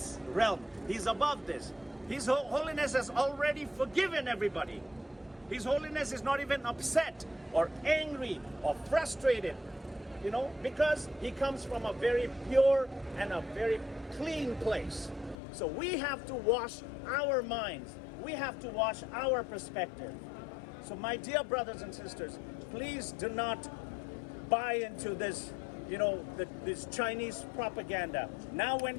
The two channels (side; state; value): right; drops out; at 15.4 s